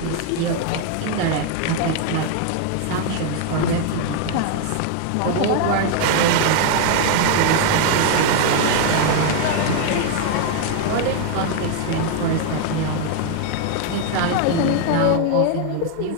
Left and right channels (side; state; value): both; different; correlation 0.01